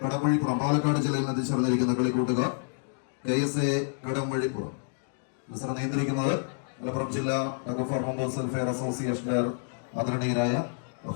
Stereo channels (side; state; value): right; silent; digital silence